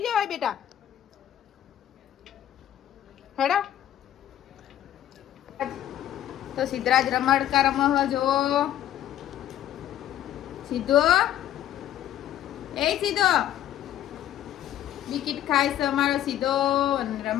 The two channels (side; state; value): right; quieter; 11.9 dB